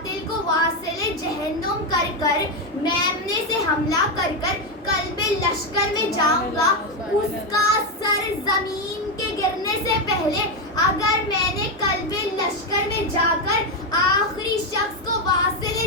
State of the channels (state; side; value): normal; both; correlation 0.08